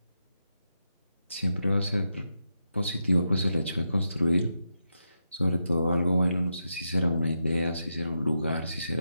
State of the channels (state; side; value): inverted; both; correlation -0.86